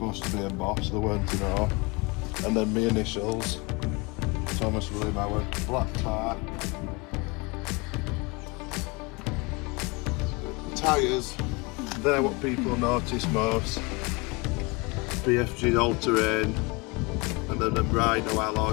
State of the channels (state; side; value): quieter; right; 27.6 dB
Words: to be embossed, there weren't to know. And then my initials, Thomas William Howard, black tyre. Tyres, they're what people notice most. BFG all-terrain, and then the Rhino